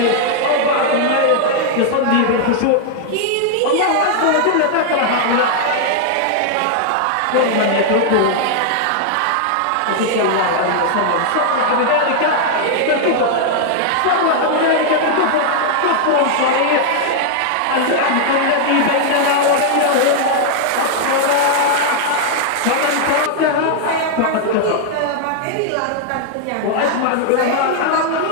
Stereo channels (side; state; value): both; different; correlation 0.00